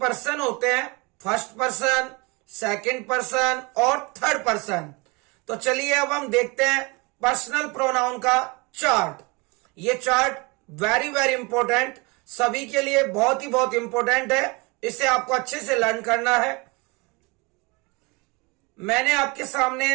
होते हैं, फर्स्ट पर्सन, सेकंड पर्सन और थर्ड पर्सन। तो चलिए अब हम देखते हैं पर्सनल प्रोनाउन का चार्ट। ये चार्ट वेरी वेरी इंपॉर्टेंट, सभी के लिए बहुत ही बहुत इंपॉर्टेंट है, इसे आपको अच्छे से लर्न करना है। मैंने आपके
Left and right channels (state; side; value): quieter; left; 27.3 dB